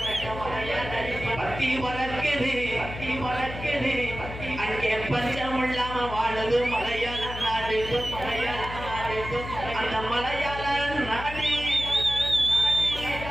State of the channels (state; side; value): noise; left; hum, 10 dB below the sound